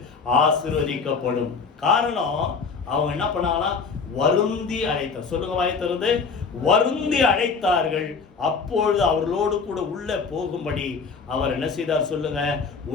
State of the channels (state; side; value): quieter; right; 5.1 dB